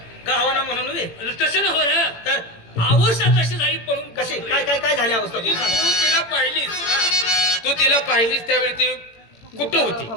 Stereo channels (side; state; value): right; late; 18 ms